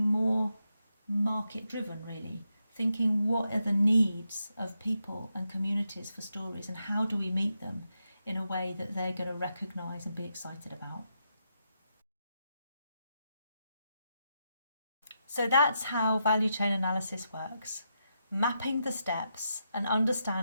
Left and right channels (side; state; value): both; inverted; correlation -0.84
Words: more market-driven, really, thinking what are the needs of people and communities for stories and how do we meet them in a way that they're going to recognise and be excited about. So that's how value chain analysis works, mapping the steps and